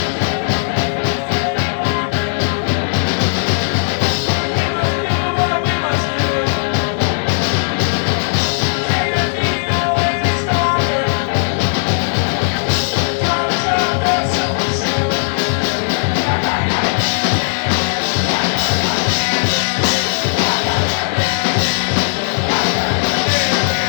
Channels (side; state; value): right; silent; digital silence